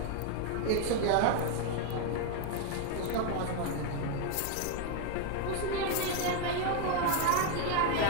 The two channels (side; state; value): both; different; correlation 0.01